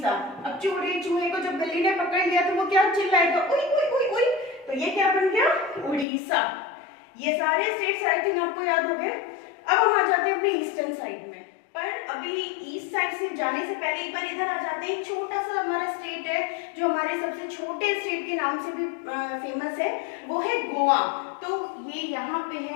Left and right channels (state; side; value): drops out; right; at 6.1 s